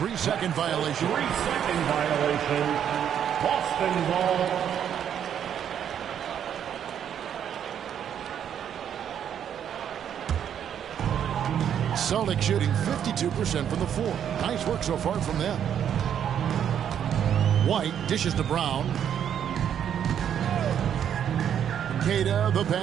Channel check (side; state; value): left; quieter; 9.1 dB